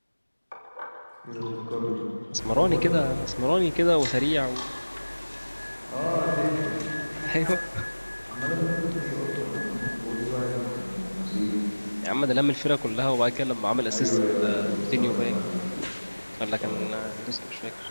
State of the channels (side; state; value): both; inverted; correlation -1.00